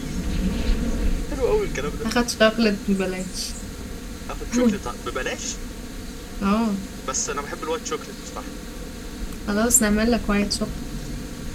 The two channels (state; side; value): identical; both; correlation 1.00